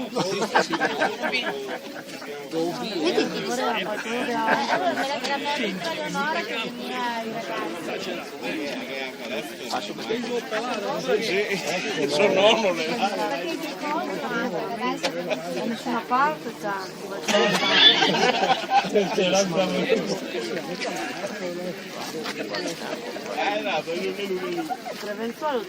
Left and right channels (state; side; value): identical; both; correlation 1.00